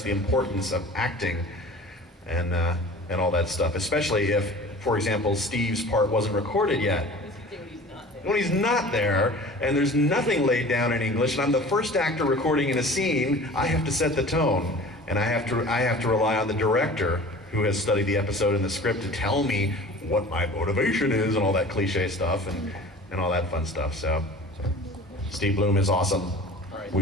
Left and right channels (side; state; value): both; normal; correlation 0.42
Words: the importance of acting and all that stuff, especially if, for example, Steve's part wasn't recorded yet. When he's not there, and there's nothing laid down in English, and I'm the first actor recording in a scene, I have to set the tone, and I have to rely on the director who has studied the episode and the script to tell me what my motivation is and all that cliche stuff and all that fun stuff. So Steve Bloom is awesome. All right.